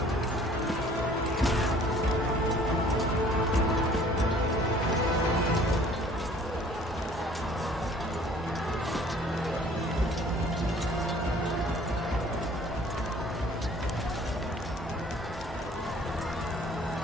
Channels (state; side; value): normal; both; correlation 0.54